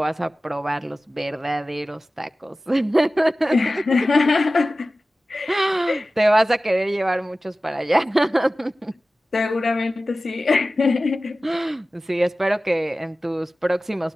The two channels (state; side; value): normal; both; correlation 0.96